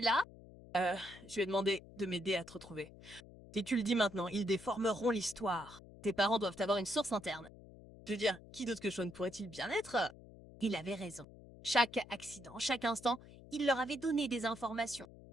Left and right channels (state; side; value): noise; left; hum, 19 dB below the sound